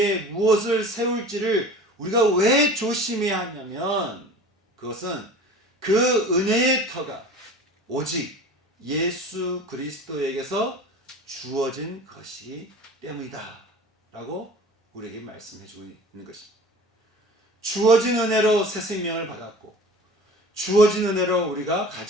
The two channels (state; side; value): normal; both; correlation 0.41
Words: 무엇을 세울지를 우리가 왜 조심해야 하냐면 그것은 그 은혜의 터가 오직 예수 그리스도에게서 주어진 것이기 때문이다 라고 우리에게 말씀해 주고 있는 것입니다. 주어진 은혜로 새 생명을 받았고 주어진 은혜로 우리가